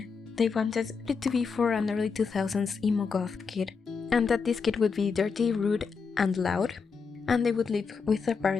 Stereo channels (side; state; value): right; quieter; 5.3 dB